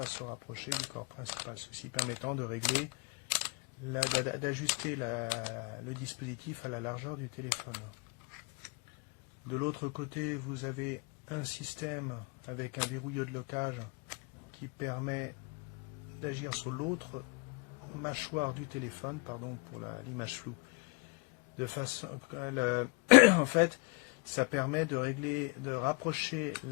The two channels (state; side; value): quieter; right; 29.6 dB